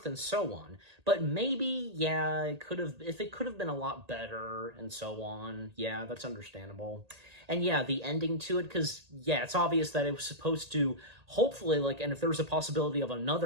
and so on. But maybe, yeah, it could have been a lot better and so on. Yeah, that's understandable. And yeah, the ending to it, because, yeah, it's obvious that it was supposed to, hopefully, like, and if there was a possibility of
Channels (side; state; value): left; late; 1.8 ms